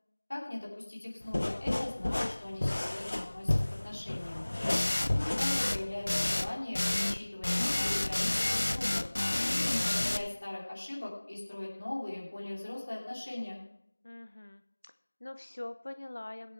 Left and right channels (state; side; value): inverted; both; correlation -1.00